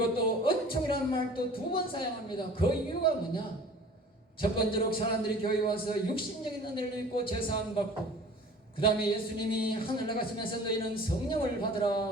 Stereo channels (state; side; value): normal; both; correlation 0.45